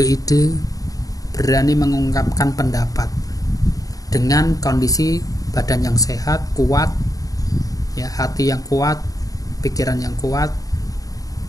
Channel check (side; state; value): right; late; 0.17 ms